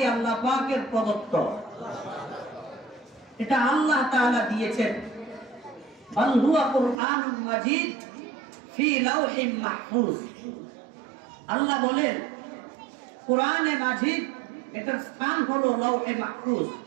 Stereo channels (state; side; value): drops out; left; at 7.0 s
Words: আল্লাহ পাকের প্রদত্ত? এটা আল্লাহ তাআলা দিয়েছেন। বাল হুয়া কুরআনুম মাজিদ ফি লাওহিম মাহফুজ। আল্লাহ বলেন কোরআনে মাজিদ এটার স্থান হলো লাওহে মাহফুজ।